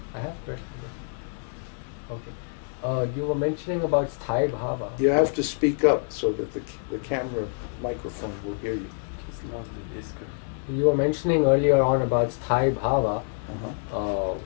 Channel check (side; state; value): right; silent; digital silence